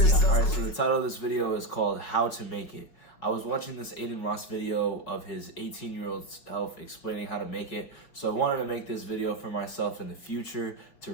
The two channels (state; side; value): late; right; 5.5 ms